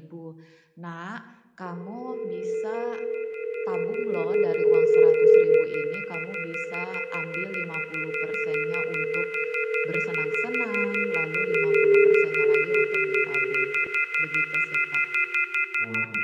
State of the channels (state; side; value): identical; both; correlation 1.00